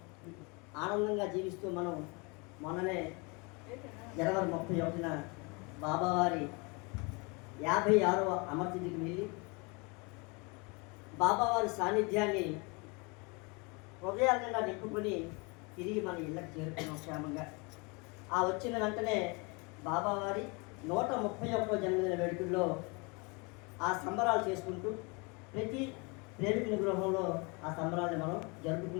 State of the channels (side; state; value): right; quieter; 29.8 dB